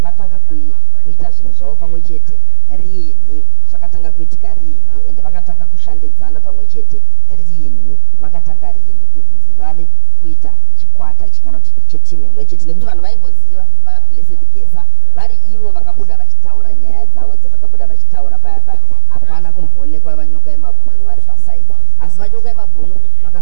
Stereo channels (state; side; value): different; both; correlation 0.00